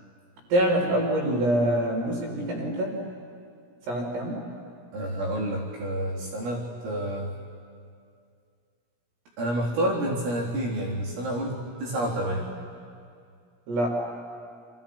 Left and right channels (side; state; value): left; late; 17 ms